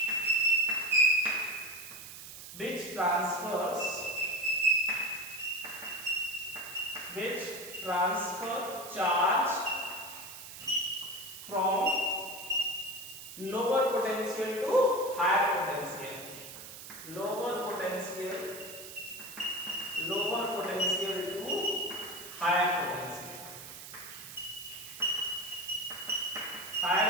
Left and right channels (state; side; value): noise; right; hiss, 12 dB below the sound